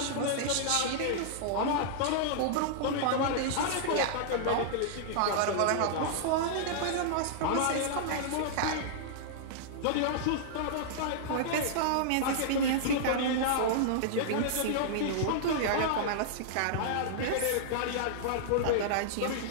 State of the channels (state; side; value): different; both; correlation -0.02